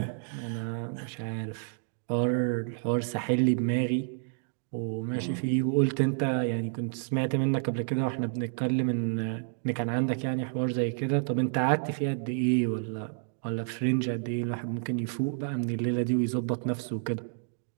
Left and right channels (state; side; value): silent; left; digital silence